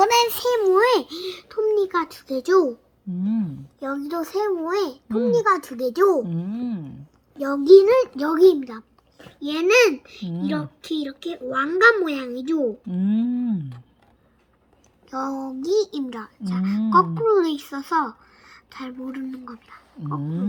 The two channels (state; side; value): identical; both; correlation 1.00